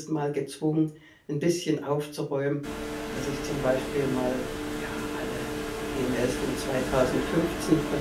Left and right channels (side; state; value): both; identical; correlation 1.00